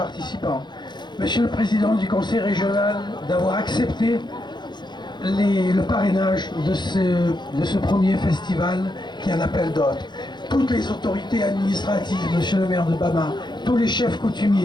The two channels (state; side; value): late; right; 0.21 ms